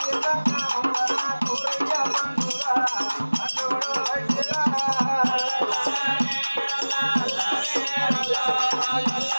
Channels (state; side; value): inverted; both; correlation -1.00